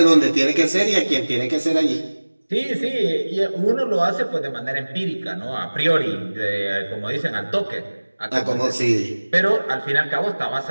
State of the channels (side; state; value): both; inverted; correlation -1.00